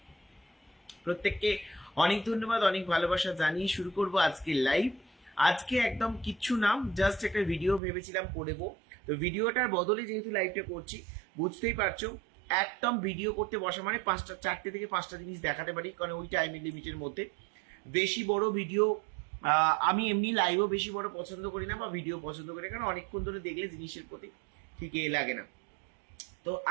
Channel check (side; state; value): left; drops out; at 7.8 s